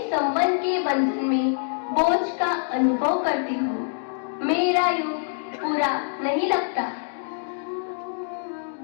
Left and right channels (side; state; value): right; silent; digital silence